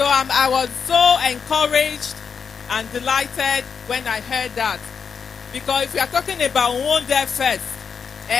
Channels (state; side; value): quieter; right; 6.2 dB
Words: I was so encouraged and delighted when I heard that. Because if we are talking about Uhunmwode First,